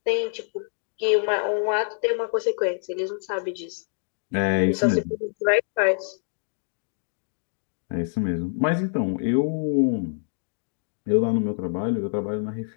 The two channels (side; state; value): right; silent; digital silence